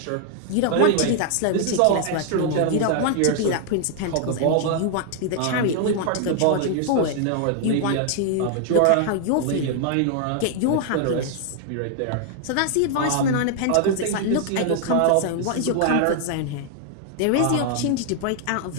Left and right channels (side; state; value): both; different; correlation 0.00